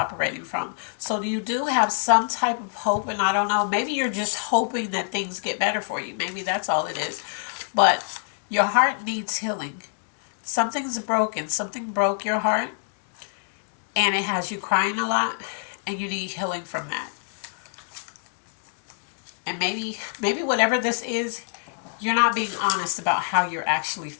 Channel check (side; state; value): right; silent; digital silence